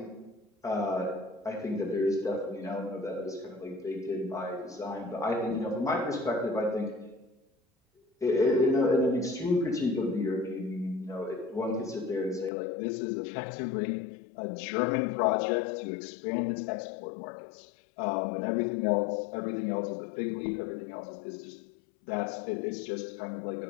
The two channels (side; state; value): right; drops out; at 12.5 s